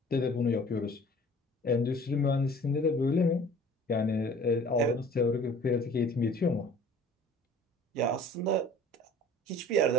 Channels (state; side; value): normal; both; correlation 0.48